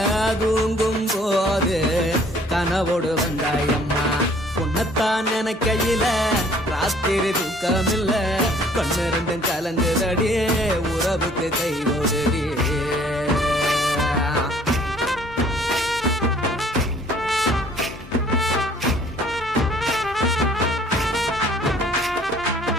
தூங்கும் போது கனவோடு வந்தாயம்மா உன்னத்தான் நினைக்கையில ராத்திரி தூக்கமில்ல கண்ணு ரெண்டும் கலங்குதடி உறவுக்கு கை ஓடுடி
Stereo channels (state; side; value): normal; both; correlation 0.57